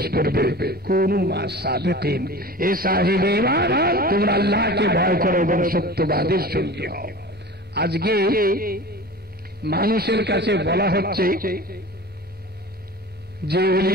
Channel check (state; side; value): normal; both; correlation 0.37